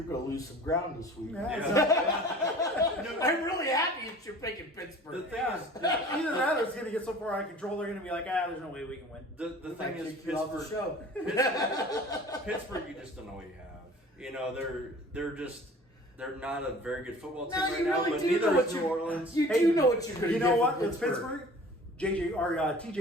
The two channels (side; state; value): both; normal; correlation 0.45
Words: going to lose some ground this week. Yeah. I'm really happy that you're picking Pittsburgh. The thing is, Either that or it's going to get so far out of control, they're going to be like, there's no way we can win. the thing is, Kick you off the Pittsburgh, show. Pittsburgh, you just don't know what you have. They're not a very good football team No, right you now, really but do neither know what is New you- Orleans. You do know what you're going to You get know from what? It's Pittsburgh. Pittsburgh.